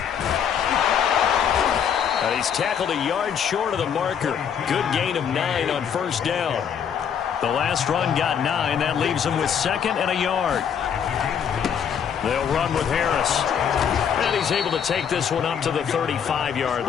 He's tackled a yard short of the marker. Good gain of 9 on first down. The last run got 9. That leaves him with 2nd and a yard. They'll run with Harris. And he's able to take this one up to the 35-yard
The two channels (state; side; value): quieter; right; 7.9 dB